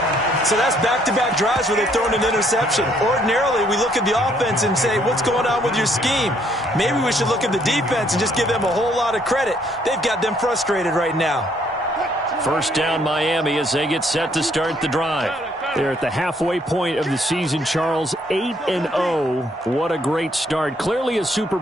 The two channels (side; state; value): both; normal; correlation 0.67